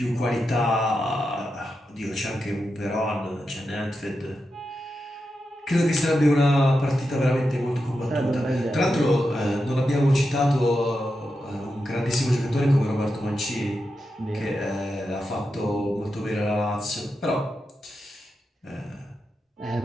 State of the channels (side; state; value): both; normal; correlation 0.88